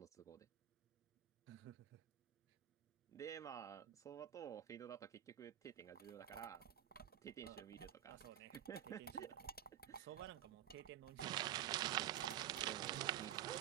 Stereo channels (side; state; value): left; quieter; 11.8 dB